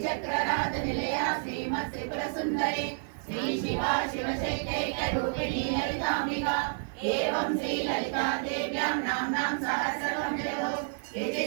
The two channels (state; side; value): silent; left; digital silence